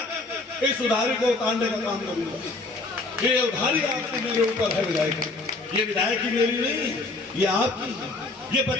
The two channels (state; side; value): quieter; right; 3.3 dB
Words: इस उधारी को उतारने का काम करूंगा। ये उधारी आपकी मेरे ऊपर है विधायक, ये विधायक की मेरी नहीं, ये आपकी है, ये